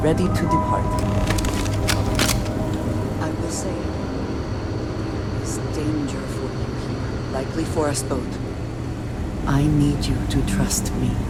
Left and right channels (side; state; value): both; identical; correlation 1.00